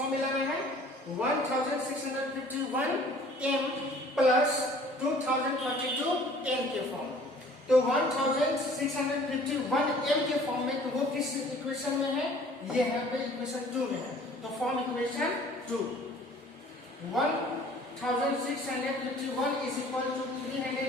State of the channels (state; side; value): normal; both; correlation 0.52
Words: में है 1651 m प्लस 2032 n के फॉर्म। तो 1651 m के फॉर्म में तो वो किस इक्वेशन में है? ये है पे इक्वेशन 2 में है। तो form equation 2 1651 is equal to